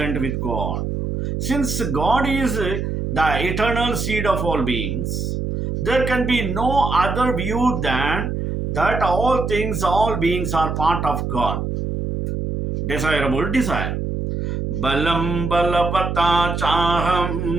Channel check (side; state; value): right; noise; hum, 3 dB below the sound